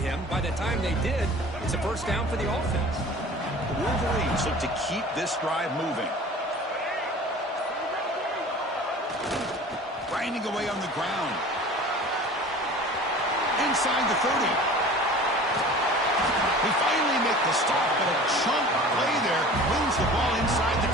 By the time they did, it's a first down for the offense. The Wolverines look to keep this drive moving. Grinding away on the ground. Inside the 30. They finally make the stop, but a chunk play there moves the ball inside the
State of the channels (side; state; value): both; normal; correlation 0.42